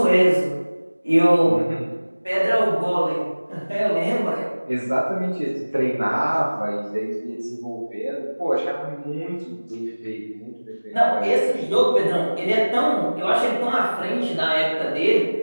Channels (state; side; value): inverted; both; correlation -1.00